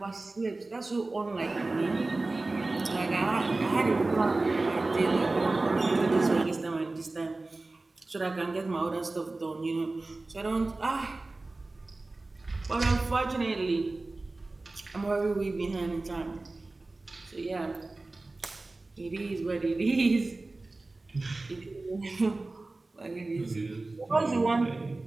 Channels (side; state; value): left; quieter; 3.2 dB